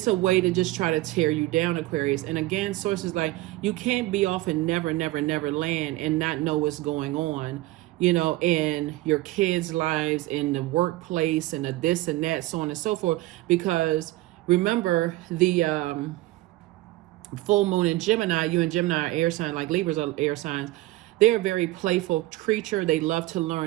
a way to just try to tear you down, Aquarius. And again, sources like, you can't be off in never, never, never land and not know what's going on, you know, in your kids' lives, in the workplace, and the this and that, so on and so forth. Because remember, the full moon in Gemini, you and Gemini are air sign, like Libras are air signs. They're a very playful creature. They love to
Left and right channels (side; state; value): left; quieter; 18.2 dB